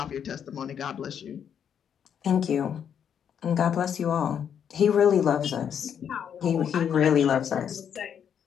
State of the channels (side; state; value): right; quieter; 8.3 dB